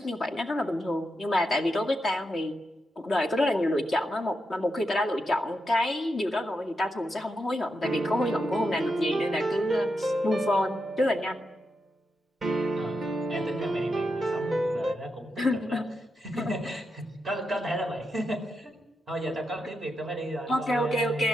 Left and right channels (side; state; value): both; normal; correlation 0.86